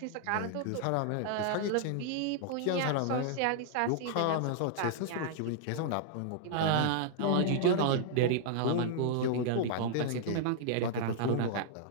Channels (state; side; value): different; both; correlation -0.01